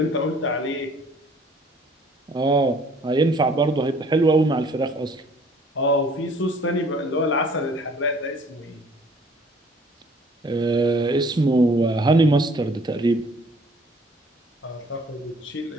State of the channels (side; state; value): both; normal; correlation 0.56